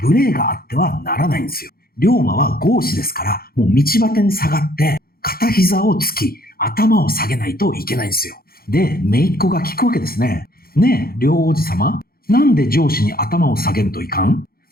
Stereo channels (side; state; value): right; late; 0.43 ms